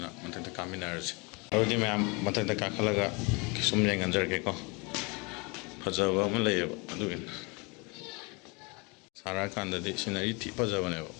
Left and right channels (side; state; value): right; quieter; 29.2 dB